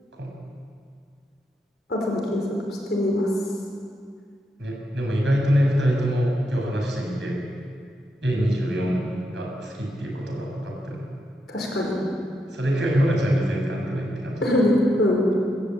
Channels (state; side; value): normal; both; correlation 0.82